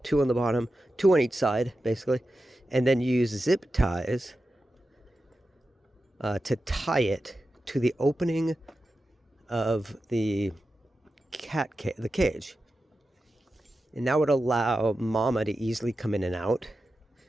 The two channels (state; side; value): normal; both; correlation 0.92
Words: 2 on the bottom, 2 on each side, basically, and then use zip ties to tie it to the opening of the the cage. And that would allow mama to easily come in and out,